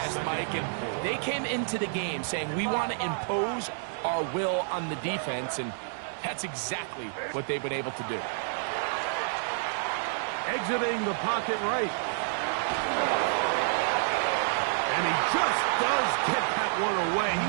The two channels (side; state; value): left; silent; digital silence